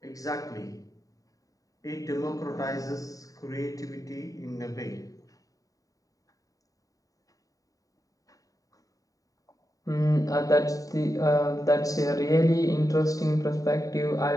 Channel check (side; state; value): right; late; 0.17 ms